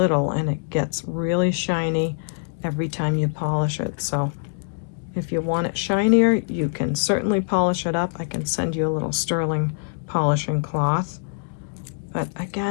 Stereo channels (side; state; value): right; silent; digital silence